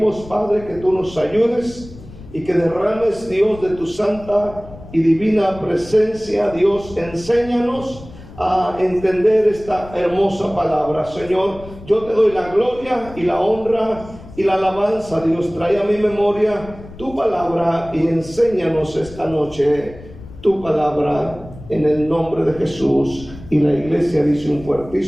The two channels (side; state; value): left; noise; rumble, 17 dB below the sound